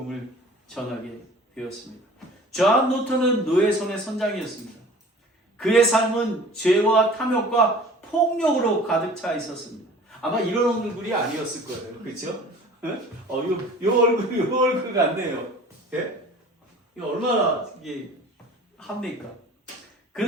전하게 되었습니다. 존 뉴턴은 노예 손의 선장이었습니다. 그의 삶은 죄와 탐욕과 폭력으로 가득 차 있었습니다. 아마 이런 얼굴이 아니었을 거예요. 그렇죠? 요 얼굴 같네요. 예? 이거 얼마나 이게 합니까?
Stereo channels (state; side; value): normal; both; correlation 0.45